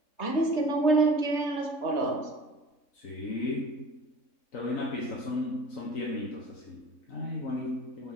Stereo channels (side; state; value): right; late; 3.6 ms